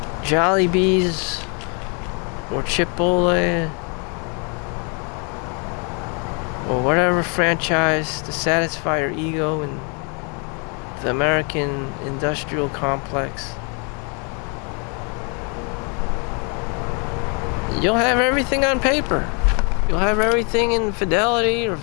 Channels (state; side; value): quieter; right; 35.7 dB